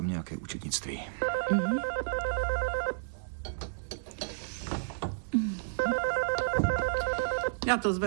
nějaké účetnictví. Já to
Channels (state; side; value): silent; left; 57 dB below the other